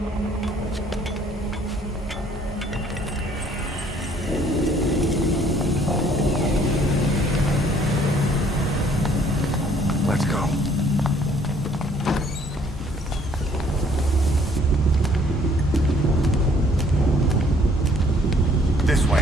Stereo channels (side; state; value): both; normal; correlation 0.61